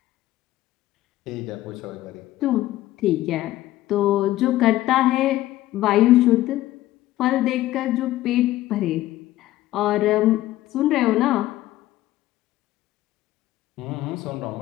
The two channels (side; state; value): right; quieter; 15.3 dB